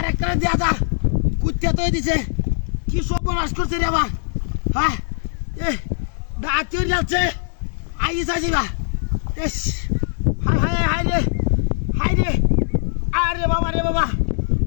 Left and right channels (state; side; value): silent; right; 65 dB below the other